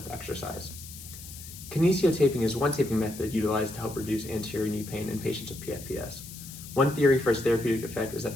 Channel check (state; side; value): noise; left; hiss, 14 dB below the sound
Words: exercise. Kinesio taping is one taping method utilized to help reduce anterior knee pain in patients with PFPS. One theory for its therapeutic effect is that